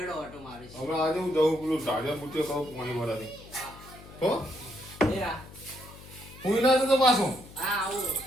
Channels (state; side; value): noise; left; hum, 18 dB below the sound